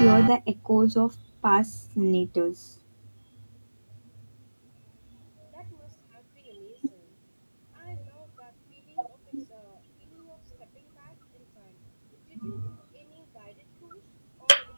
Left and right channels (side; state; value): both; inverted; correlation -1.00